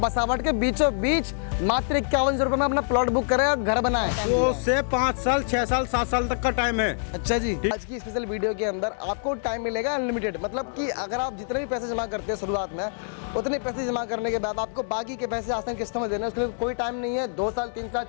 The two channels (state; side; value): silent; right; digital silence